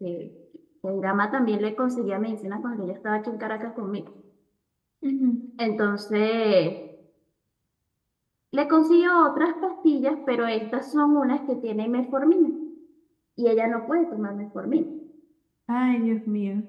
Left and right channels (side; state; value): both; identical; correlation 1.00